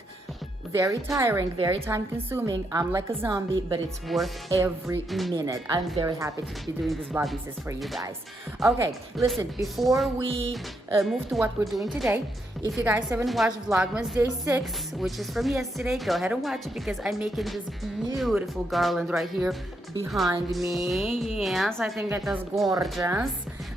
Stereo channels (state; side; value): normal; both; correlation 0.80